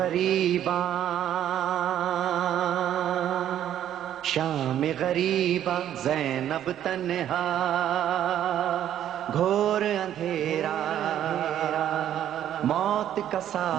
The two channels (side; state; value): left; quieter; 10.9 dB